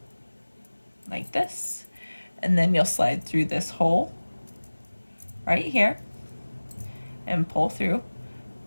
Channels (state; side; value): inverted; both; correlation -1.00